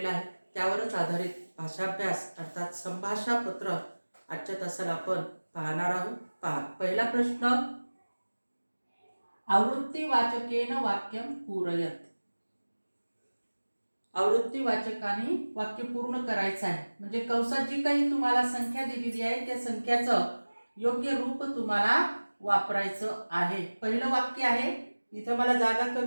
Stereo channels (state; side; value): inverted; both; correlation -1.00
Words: आहे. त्यावरच आधारित भाषाभ्यास अर्थात संभाषा पत्र आजच्या तासाला आपण पाहणार आहोत. पहा, पहिला प्रश्न, आवृत्तीवाचकेन वाक्यम पूरयत. आवृत्तीवाचकाने वाक्य पूर्ण करायचं आहे. म्हणजे कंसात जी काही तुम्हाला संख्या दिलेली आहे त्या संख्याचं योग्य रूप तुम्हाला वापरायचं आहे. पहिलं वाक्य आहे. इथं मला जागा